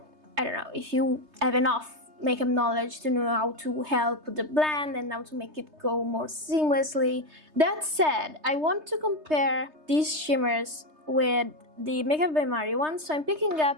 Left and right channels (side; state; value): left; late; 3.3 ms